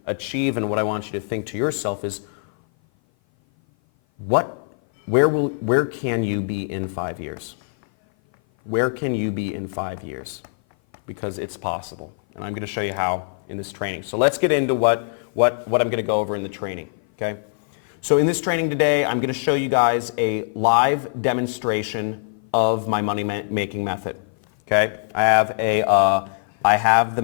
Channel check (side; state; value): right; silent; 56 dB below the other